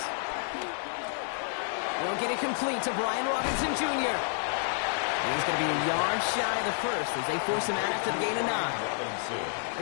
Won't get it complete to Brian Robinson Jr. He's going to be a yard shy of the first as they force him out after the gain of 9.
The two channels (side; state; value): right; silent; 55 dB below the other